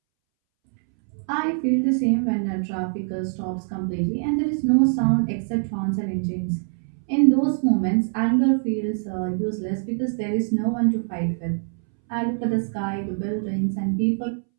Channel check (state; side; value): silent; left; 63 dB below the other